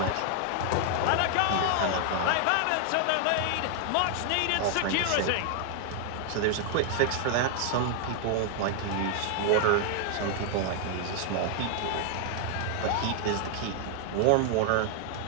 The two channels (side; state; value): both; different; correlation 0.00